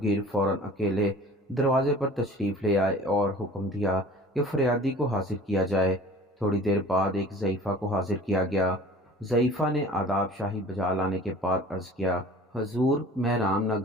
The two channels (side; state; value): both; normal; correlation 0.45